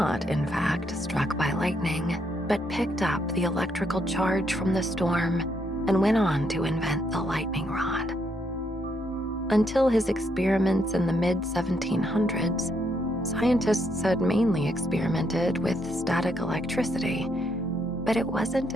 in fact, struck by lightning, but picked up the electrical charge from the storm and went on to invent the lightning rod. Until his experiments in the mid-1700s, scientists had mainly experimented with static electricity, but it wasn't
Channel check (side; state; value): both; normal; correlation 0.75